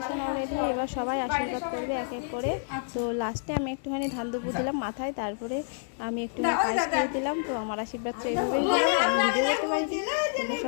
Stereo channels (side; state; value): right; silent; digital silence